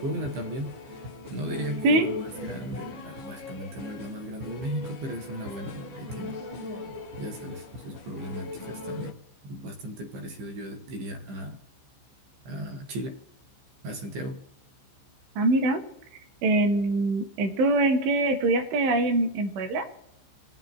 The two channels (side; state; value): left; late; 15 ms